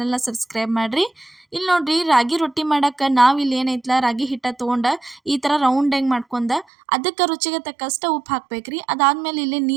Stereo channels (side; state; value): left; drops out; at 6.7 s